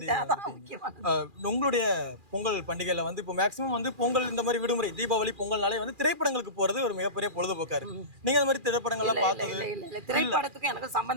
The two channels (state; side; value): late; left; 2.4 ms